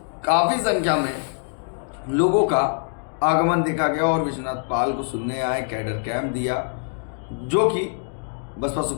काफी संख्या में लोगों का आगमन देखा गया और विश्वनाथ पाल को सुनने आए। कैडर कैंप दिया, जो कि बसपा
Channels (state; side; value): silent; right; 63 dB below the other